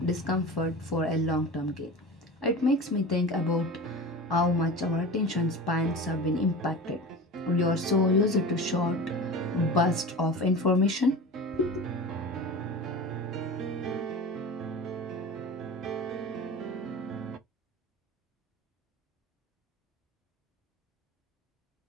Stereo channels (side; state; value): both; normal; correlation 0.33